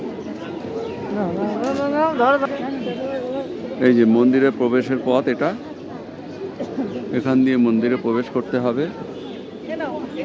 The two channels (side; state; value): both; identical; correlation 1.00